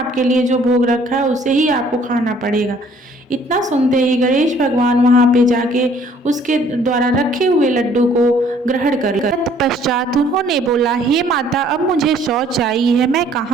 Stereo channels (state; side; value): normal; both; correlation 0.59